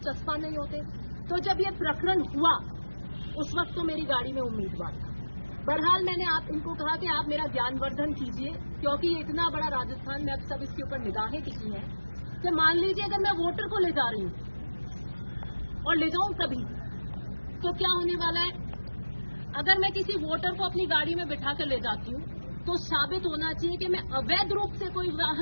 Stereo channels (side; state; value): both; inverted; correlation -1.00